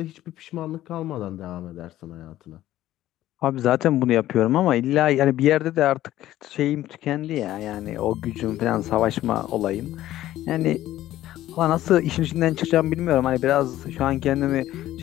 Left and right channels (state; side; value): quieter; right; 14.1 dB